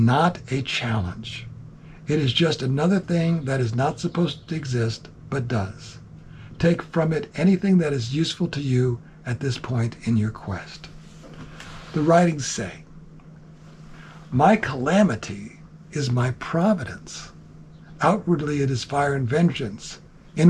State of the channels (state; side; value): identical; both; correlation 1.00